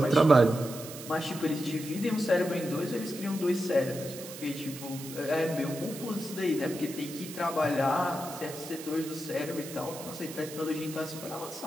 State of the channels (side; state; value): right; noise; hiss, 12 dB below the sound